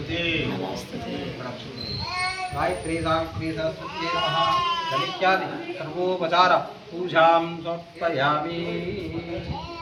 गायत्री सावित्री सरस्वती नमः इत्यादि सर्वोपचार पूजां समर्पयामि।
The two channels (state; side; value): identical; both; correlation 1.00